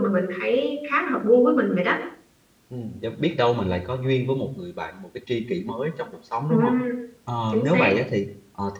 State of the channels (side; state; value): both; identical; correlation 1.00